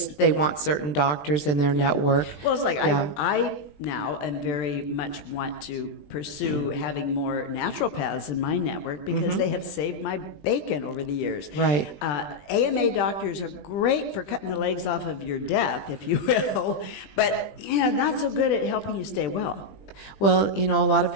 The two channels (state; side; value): late; right; 20 ms